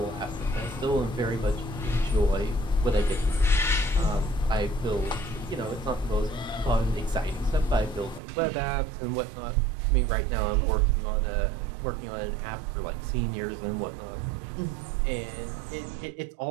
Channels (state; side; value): drops out; left; at 8.2 s